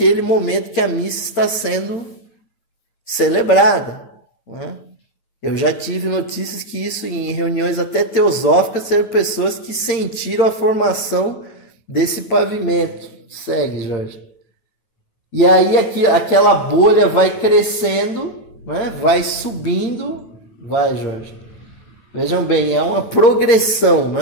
momento que a missa está sendo celebrada, né? Eu já tive notícias que isso em reuniões até teosóficas, eram pessoas que sentiram a formação desse pavimento. Segue, Jorge. E aí aquela bolha vai crescendo, né? Vai subindo, Jorge. Vejam bem, é uma progressão,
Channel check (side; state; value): right; late; 9.2 ms